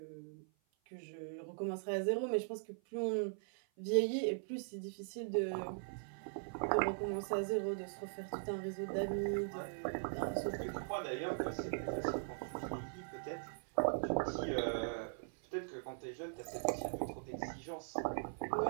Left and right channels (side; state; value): left; silent; 51 dB below the other